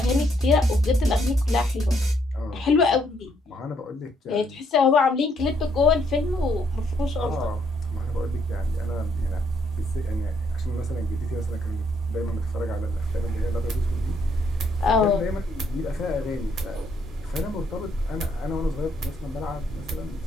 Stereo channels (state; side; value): normal; both; correlation 0.71